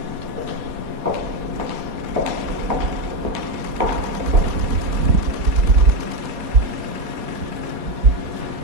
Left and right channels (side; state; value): left; late; 4.2 ms